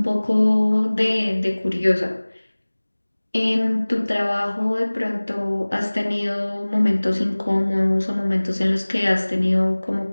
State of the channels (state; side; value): inverted; both; correlation -1.00